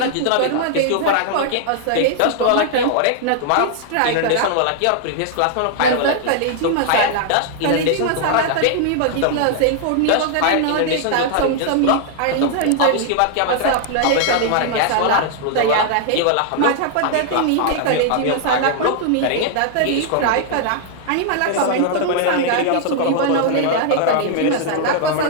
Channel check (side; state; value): both; different; correlation 0.00